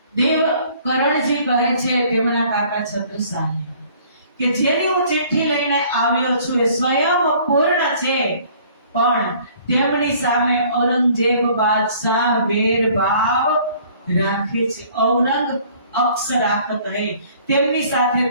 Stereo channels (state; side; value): inverted; both; correlation -0.56